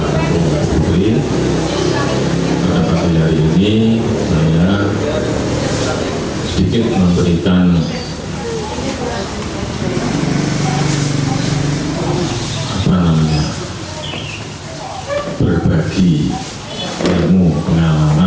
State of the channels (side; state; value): both; identical; correlation 1.00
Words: putri. Pada pagi hari ini saya sedikit memberikan berbagi ilmu